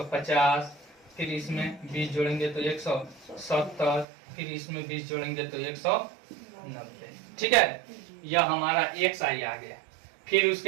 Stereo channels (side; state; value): left; drops out; at 4.0 s